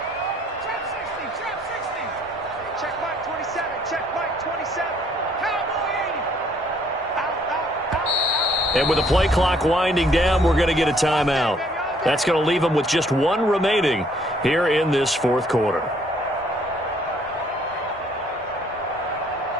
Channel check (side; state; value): both; normal; correlation 0.63